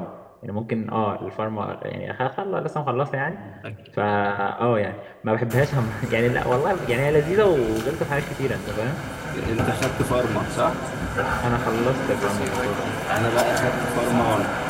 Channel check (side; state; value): both; identical; correlation 1.00